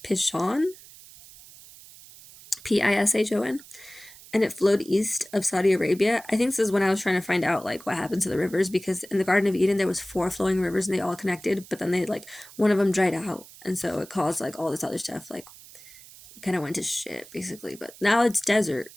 Pishon, Pishon, and it flowed east of Saudi Arabia. I think this is when I was trying to find out like what happened to the rivers, because in the Garden of Eden there was 4 flowing rivers and they all connected, but then they like one of them dried out, and so it caused like all this other stuff, like kind of went to shit basically. But now it's desert.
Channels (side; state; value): right; noise; hiss, 20 dB below the sound